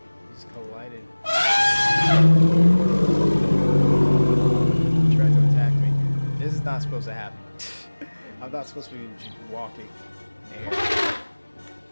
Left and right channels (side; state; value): both; inverted; correlation -1.00